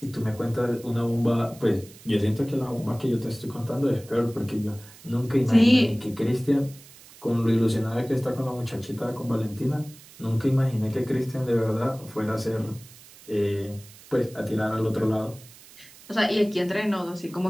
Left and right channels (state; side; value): noise; right; hiss, 21 dB below the sound